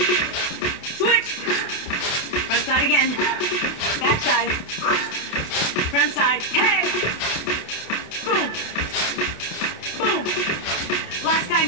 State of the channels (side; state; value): right; late; 28 ms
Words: Switch. Front side again. Back side. Front side. Hey. Boom. Boom. Last time,